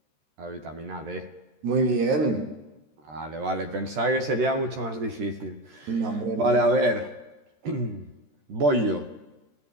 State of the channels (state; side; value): late; left; 13 ms